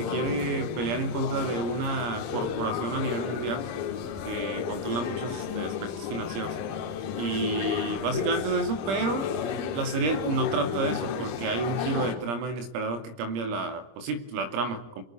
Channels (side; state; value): left; late; 26 ms